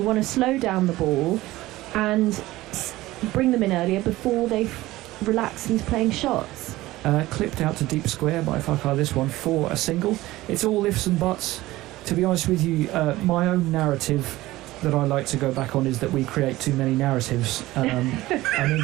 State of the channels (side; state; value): left; quieter; 17.6 dB